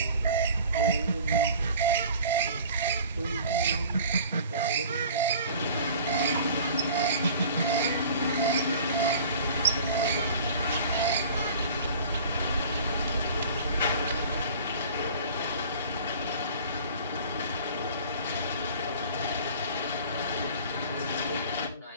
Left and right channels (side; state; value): both; inverted; correlation -0.45